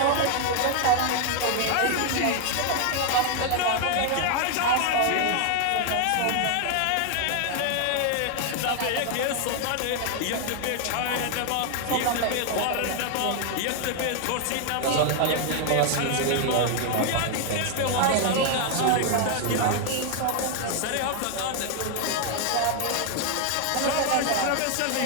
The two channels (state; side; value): different; both; correlation 0.00